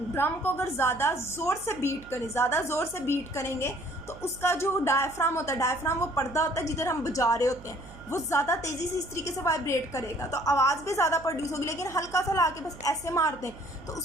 ड्रम को अगर ज़्यादा ज़ोर से बीट करें, ज़्यादा ज़ोर से बीट करेंगे तो उसका जो डायफ्राम होता है, डायफ्राम वो पर्दा होता है जिधर हम बजा रहे होते हैं, वो ज़्यादा तेज़ी से इस तरीके से वाइब्रेट करेगा तो आवाज़ भी ज़्यादा प्रोड्यूस होगी। लेकिन हल्का सा ला के बस ऐसे मार दें तो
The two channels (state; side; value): noise; right; hum, 19 dB below the sound